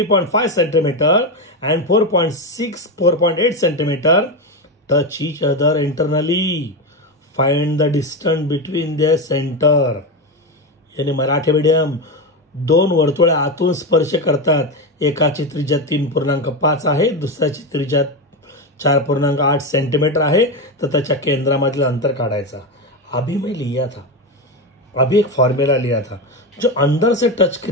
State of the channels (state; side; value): normal; both; correlation 0.14